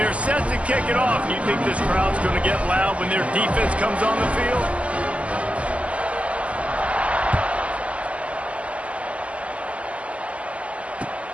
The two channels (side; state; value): left; late; 0.063 ms